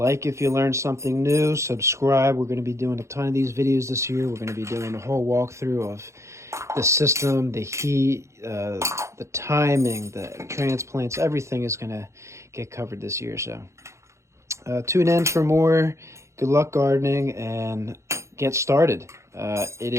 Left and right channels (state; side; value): late; left; 0.14 ms